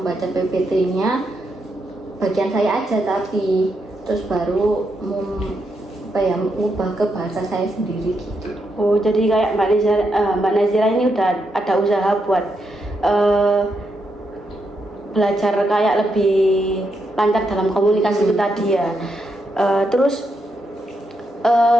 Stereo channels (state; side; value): normal; both; correlation 0.81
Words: PPT-nya bagian saya aja, tapi terus baru mengubah ke bahasa saya sendiri gitu. Oh, jadi kayak Mbak Nazira ini udah ada usaha buat belajar kayak lebih lancar dalam komunikasi itu tadi ya. Terus